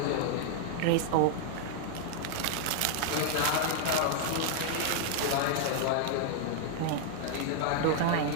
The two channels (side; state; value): both; different; correlation 0.00